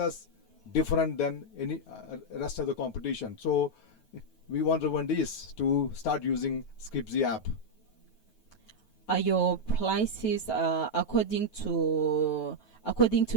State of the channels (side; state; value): right; late; 9.3 ms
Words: different than any rest of the competition. So we want Rwandese to start using Scripzy app. Are your prices according to